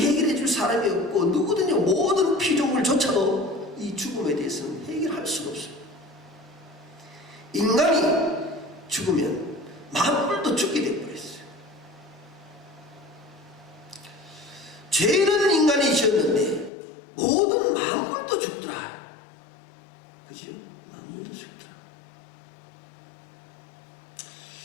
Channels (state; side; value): drops out; right; at 16.7 s